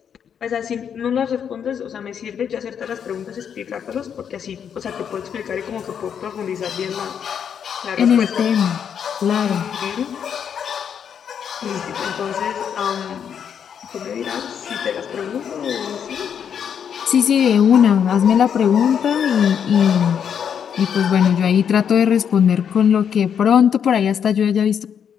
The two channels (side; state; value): right; quieter; 8.0 dB